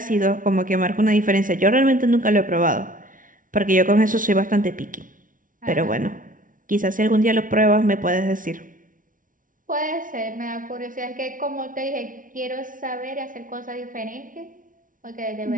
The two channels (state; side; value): late; left; 0.38 ms